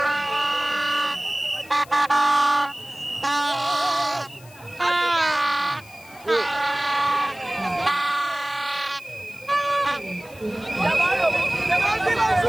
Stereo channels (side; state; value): left; noise; hiss, 23 dB below the sound